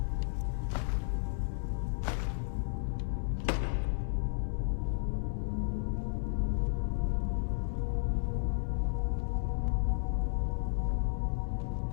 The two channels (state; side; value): silent; right; digital silence